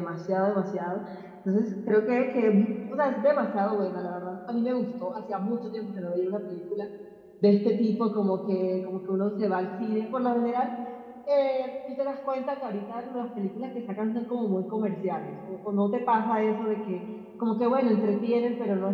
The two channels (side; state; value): both; identical; correlation 1.00